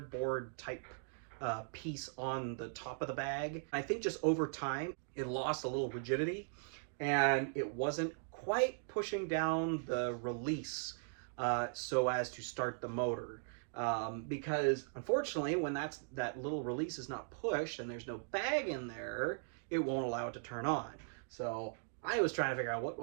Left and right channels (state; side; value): silent; left; digital silence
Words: type piece on the top of the bag. I think just over time, it lost a little rigidity, and it wasn't quite pushing down the release so as to start the motor. because unfortunately, when that little release is not pushed and there's no bag in there, it won't allow it to turn on. So I was trying to figure out what